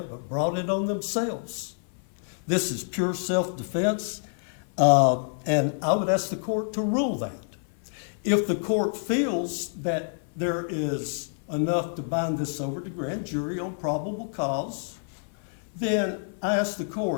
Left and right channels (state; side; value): silent; right; 57 dB below the other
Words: but brought it on themselves. This is pure self-defense, and I would ask the court to rule that. If the court feels that there is enough to bind this over to grand jury on probable cause, then I ask the